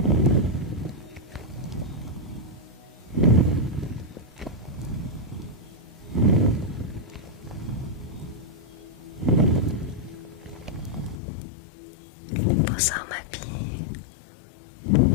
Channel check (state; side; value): drops out; right; at 11.2 s